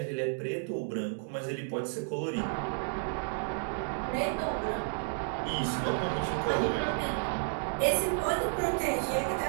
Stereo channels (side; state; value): left; silent; digital silence